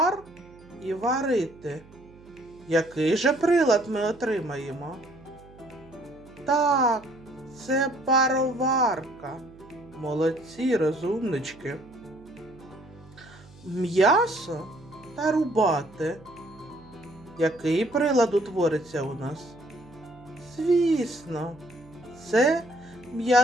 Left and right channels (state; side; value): noise; right; hum, 23 dB below the sound